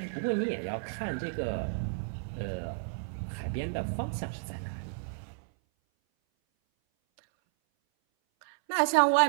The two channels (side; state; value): left; silent; 57 dB below the other